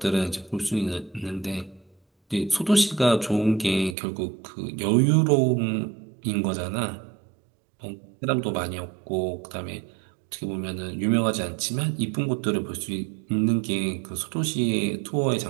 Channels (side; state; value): left; drops out; at 4.0 s